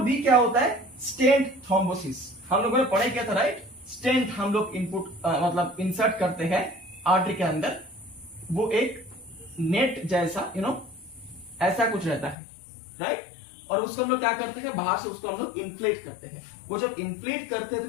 क्या होता है, स्टेंट थ्रोम्बोसिस। हम लोगों ने पढ़ाई किया था, राइट, स्टेंट हम लोग इनपुट मतलब इंसर्ट करते हैं आर्टरी के अंदर, वो एक नेट जैसा ऐसा कुछ रहता है, राइट, और उसको हम लोग क्या करते हैं, बाहर से उसको हम लोग इन्फ्लेट करते हैं। वो जब इन्फ्लेट करते हैं तो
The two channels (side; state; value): right; drops out; at 12.4 s